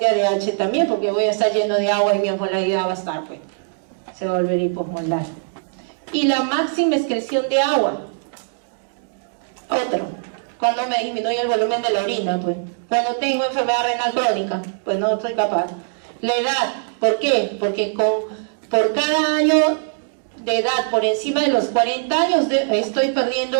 ADH también, porque voy a estar lleno de agua y mi osmolaridad va a estar, pues, se va a volver hiposmolar. Y la máxima excreción de agua. Otro, cuando me disminuye el volumen de la orina, pues. Cuando tengo enfermedad renal crónica, pues no estoy capaz. La edad, ¿Por qué? Porque por cada año de edad por encima de los 40 años estoy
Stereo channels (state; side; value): silent; left; digital silence